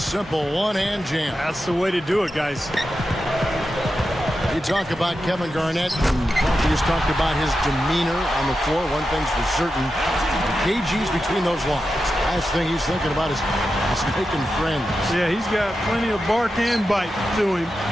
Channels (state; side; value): normal; both; correlation 0.90